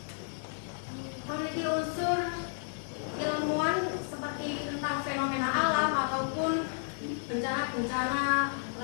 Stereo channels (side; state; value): right; silent; digital silence